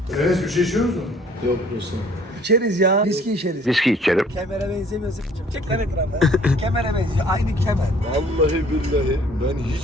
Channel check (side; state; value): both; normal; correlation 0.57